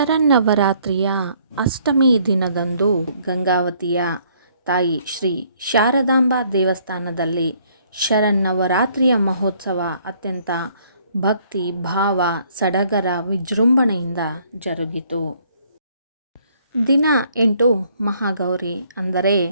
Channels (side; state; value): both; inverted; correlation -0.64